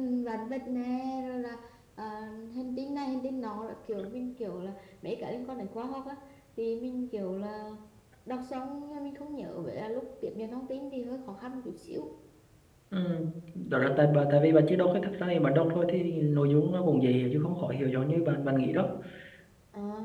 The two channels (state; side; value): identical; both; correlation 1.00